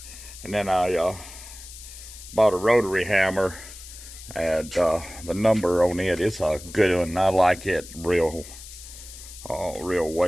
And then I bought a rotary hammer, and the number on it is a good one. I like it real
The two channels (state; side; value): noise; left; hiss, 15 dB below the sound